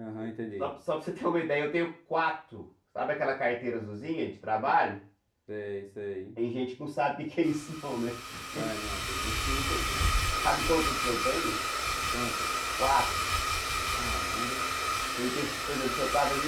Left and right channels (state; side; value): identical; both; correlation 1.00